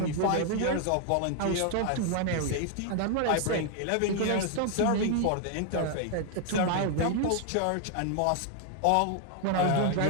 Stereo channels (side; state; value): both; different; correlation 0.00